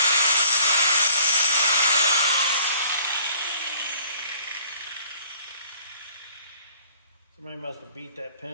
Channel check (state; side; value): inverted; both; correlation -0.53